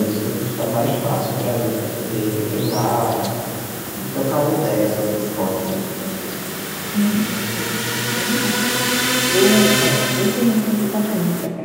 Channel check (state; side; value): identical; both; correlation 1.00